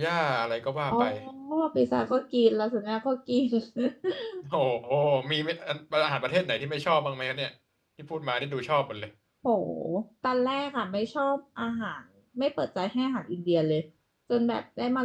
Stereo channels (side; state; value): both; identical; correlation 1.00